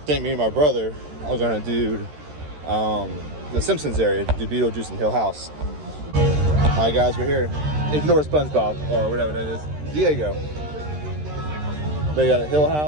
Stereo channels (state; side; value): late; left; 13 ms